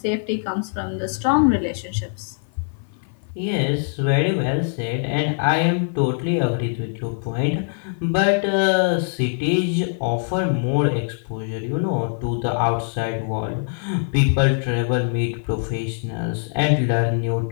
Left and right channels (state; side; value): silent; right; 55 dB below the other